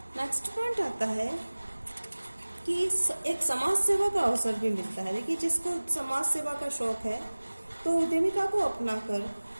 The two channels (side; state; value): both; inverted; correlation -1.00